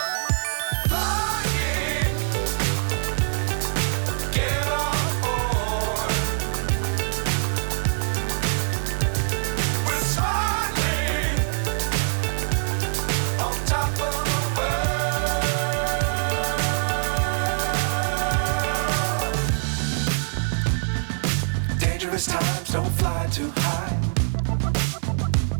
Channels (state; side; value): silent; left; 63 dB below the other